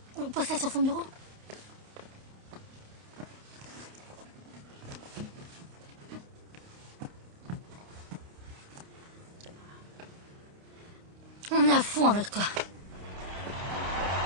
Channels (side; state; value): left; late; 29 ms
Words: On pose ça sur son bureau. On est à fond avec toi.